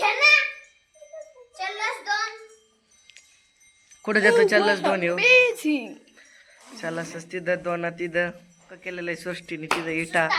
कुठे जातो. चल्लस 2 येऊ. चल्लस तिथं 2 तिथं पक्का केलेलं आहे सृष्टीने. तिथं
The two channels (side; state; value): both; identical; correlation 1.00